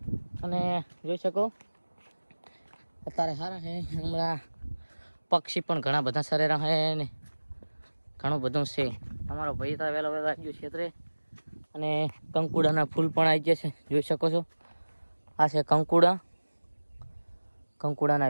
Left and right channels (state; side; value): inverted; both; correlation -1.00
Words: અને જોઈ શકો અત્યારે સારા હે હમણાં પક્ષી પણ ઘણા બધા સરેરા હે ને ઘણું બધું છે અમારો ભાઈ તો વહેલો વહેલો આવી ગયો ક્ષેત્રે અને કંકુડાના ફૂલ પણ આવી ગયા છે જોઈ શકો છો આ છે કંકુડાના